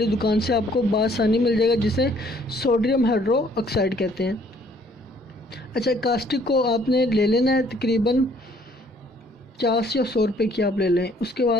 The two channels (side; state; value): both; normal; correlation 0.62